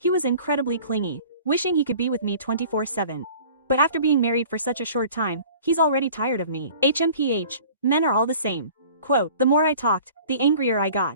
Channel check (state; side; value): inverted; both; correlation -0.47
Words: was incredibly clingy, wishing he could be with me 24/7. But after being married for such a short time, he's already tired of me. HMPH, men are all the same. Quote, the more I talked, the angrier I